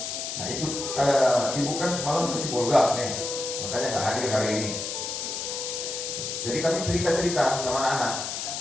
Nah itu, ibu kan semalam ke Sibolga nih, makanya nggak hadir hari ini. Jadi kami cerita-cerita sama anak-anak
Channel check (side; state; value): left; noise; hiss, 4 dB below the sound